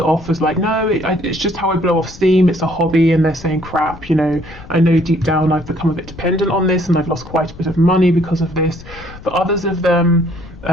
off as like, no, it's just how I blow off steam. It's a hobby, and they're saying, crap, you know, I know deep down I've become a bit dependent on this, and I've lost quite a bit of money because of this. For others of them,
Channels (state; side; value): noise; left; rumble, 18 dB below the sound